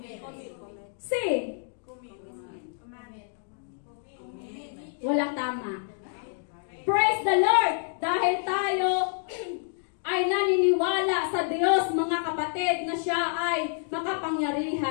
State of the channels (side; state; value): right; silent; digital silence